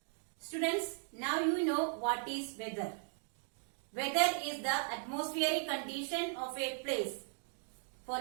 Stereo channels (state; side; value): silent; left; 53 dB below the other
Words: Students, now you know what is weather. Weather is the atmospheric condition of a place